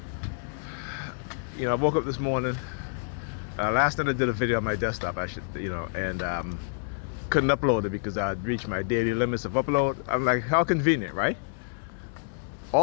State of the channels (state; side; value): silent; right; 58 dB below the other